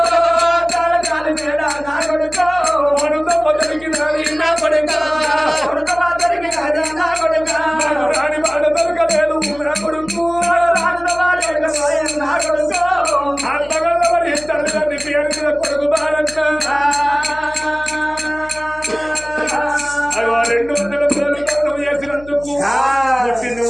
తాళకాలి మేడ నా కొడుకు వడుతో మొదలికి నాది నా కొడుకు కొడుకు దొరికిన నా కొడుకు రాని మాట దొరకలేదు నా కొడుకు నా కొడుకు ఆత్మగల్లవని తల్లిదండ్రి పేరు మీద కొడుకు బాలన్న అగో 200 రోజులు దానం చేసినందుకు పుట్టింది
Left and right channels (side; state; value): left; noise; hum, 20 dB below the sound